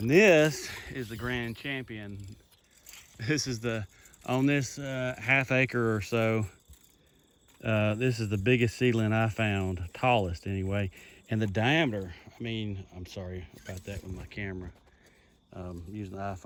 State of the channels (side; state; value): both; identical; correlation 1.00